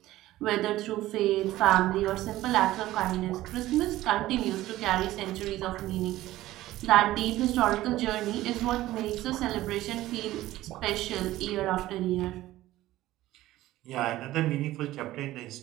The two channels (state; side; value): quieter; left; 15.8 dB